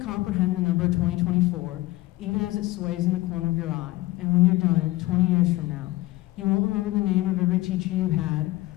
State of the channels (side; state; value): right; quieter; 18.4 dB